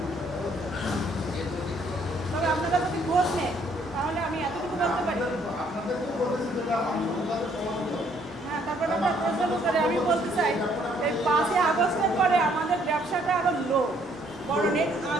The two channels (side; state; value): both; normal; correlation 0.66